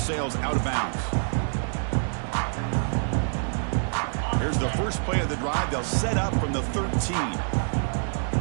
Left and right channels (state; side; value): silent; left; digital silence